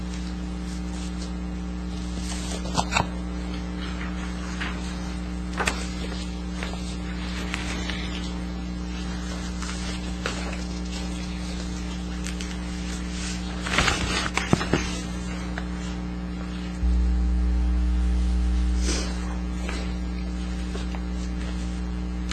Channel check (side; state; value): both; identical; correlation 1.00